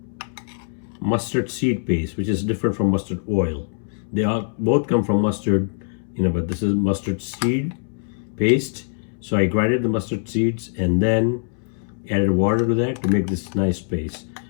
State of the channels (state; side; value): silent; right; 64 dB below the other